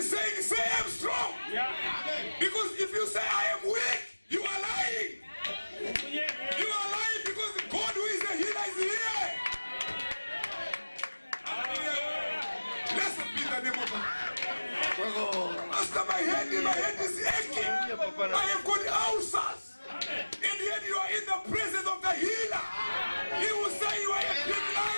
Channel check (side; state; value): both; inverted; correlation -1.00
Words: saying, say I'm strong. Yeah. Amen. Because if you say I am weak, you are lying. You are lying because God who is the healer is here. Hallelujah. Blessed be the name of God. Master, my head is aching. I have got ulcers. Amen. And yet you are in the presence of the healer. He will say you are a big